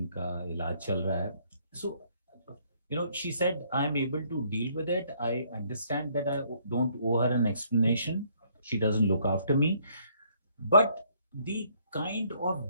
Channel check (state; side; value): inverted; both; correlation -0.66